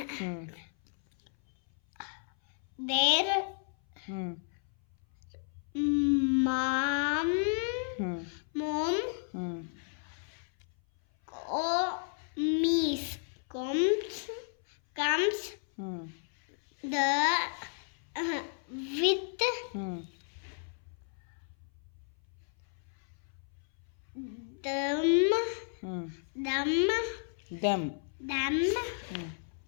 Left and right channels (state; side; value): silent; right; 56 dB below the other